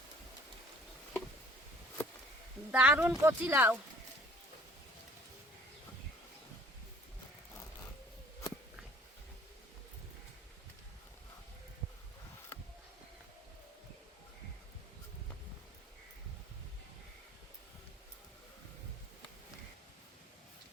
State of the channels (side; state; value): both; normal; correlation 0.53